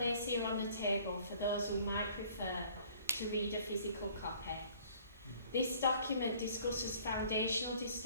here on the table for those who might prefer to read a physical copy. This document discusses foundational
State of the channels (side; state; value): both; inverted; correlation -0.55